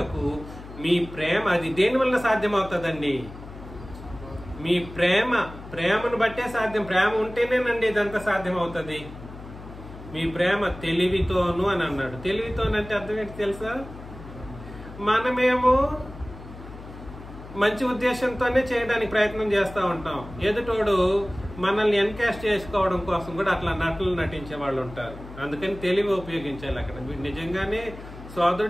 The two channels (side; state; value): left; noise; hum, 15 dB below the sound